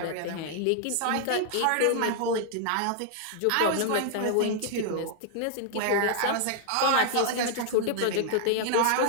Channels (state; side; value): different; both; correlation 0.00